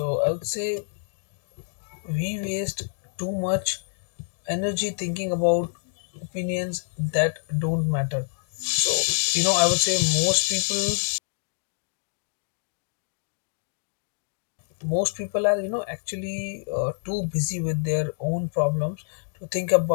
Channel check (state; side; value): silent; right; digital silence